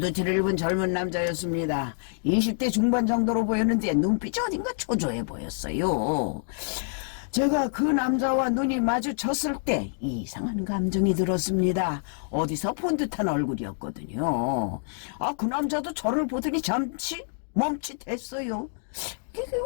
입은 젊은 남자였습니다. 20대 중반 정도로 보였는데 눈빛이 어딘가 초조해 보였어요. 제가 그 남자와 눈이 마주쳤을 때 이상한 감정이 들었습니다. 어디서 본 듯한 얼굴이었거든요. 그 남자도 저를 보더니 잠시 멈칫했어요. 이게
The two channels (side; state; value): right; silent; digital silence